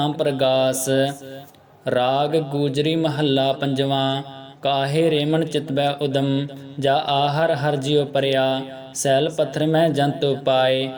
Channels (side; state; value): both; identical; correlation 1.00